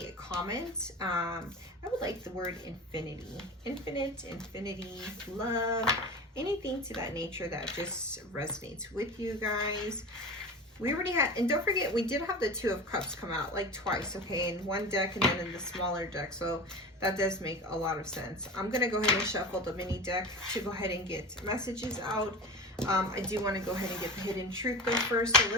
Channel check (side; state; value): both; normal; correlation 0.31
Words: comment. I would like the word infinity, infinity, love, anything to that nature that just resonates with you guys. We already had, and don't forget, we did have the Two of Cups come out like twice, okay, in one deck and then in the smaller deck, so that does make a lot of sense. I'm going to go ahead and shuffle the mini deck to go ahead and get messages out. I do want to go ahead and get the hidden truth though first, so